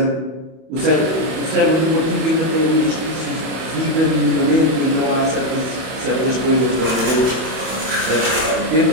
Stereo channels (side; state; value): left; late; 31 ms